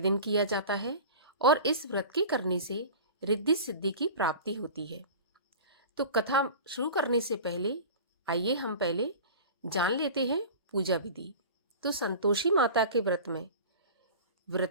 किया जाता है और इस व्रत के करने से रिद्धि सिद्धि की प्राप्ति होती है। तो कथा शुरू करने से पहले आइए हम पहले जान लेते हैं पूजा विधि। तो संतोषी माता के व्रत में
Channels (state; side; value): inverted; both; correlation -0.36